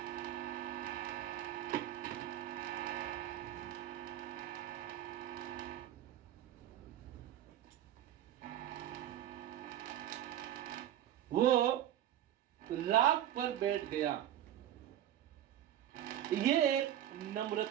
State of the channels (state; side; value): quieter; left; 11.9 dB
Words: वो राख पर बैठ गया। ये एक